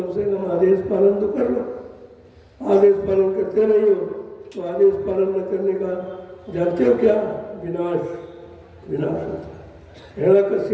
से कम आदेश पालन तो कर लो। आदेश पालन करते नहीं हो तो आदेश पालन न करने का जानते हो क्या, विनाश, विनाश होता है।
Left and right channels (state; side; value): identical; both; correlation 1.00